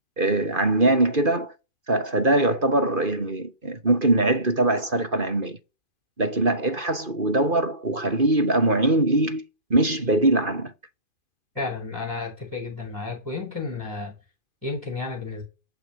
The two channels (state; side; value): late; left; 2.5 ms